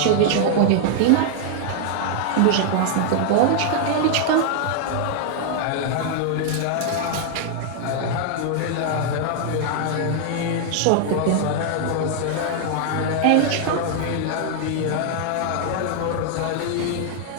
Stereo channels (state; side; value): different; both; correlation 0.00